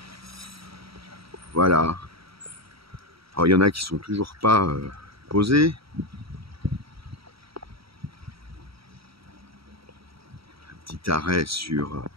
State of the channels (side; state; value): left; late; 0.75 ms